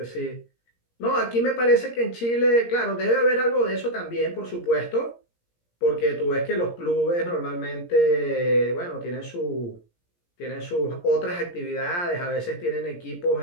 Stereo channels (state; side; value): late; right; 17 ms